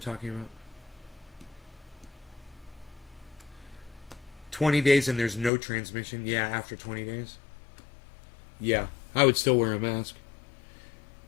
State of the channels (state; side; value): drops out; right; at 5.5 s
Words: about. 20 days and there's no transmission. Yeah, after 20 days. Yeah, I would still wear a mask.